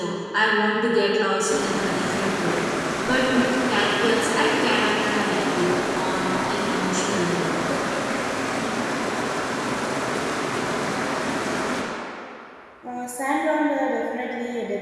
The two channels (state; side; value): identical; both; correlation 1.00